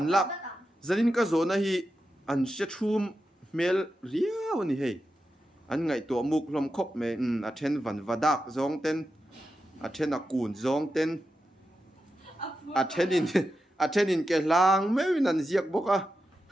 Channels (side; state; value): both; normal; correlation 0.89